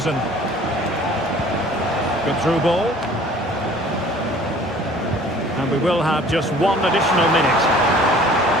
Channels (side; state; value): both; normal; correlation 0.50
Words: Good through ball. And we will have just one additional minute.